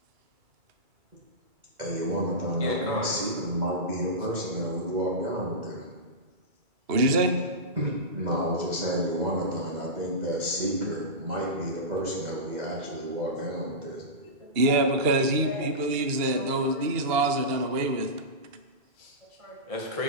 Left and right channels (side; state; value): left; late; 2.3 ms